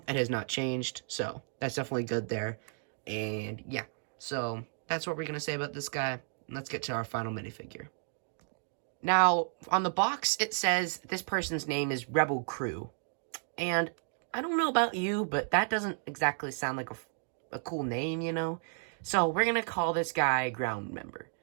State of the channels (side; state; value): left; silent; 56 dB below the other